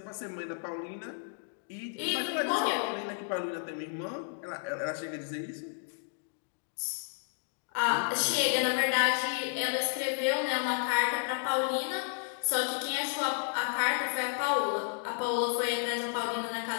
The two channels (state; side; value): silent; right; 56 dB below the other